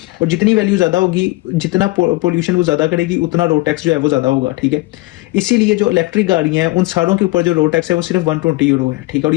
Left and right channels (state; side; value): quieter; right; 21.7 dB